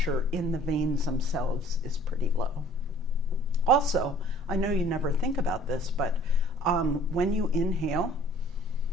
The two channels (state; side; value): normal; both; correlation 0.53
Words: in the veins themselves is pretty low. Also, I know you never think about this, but when you inhale,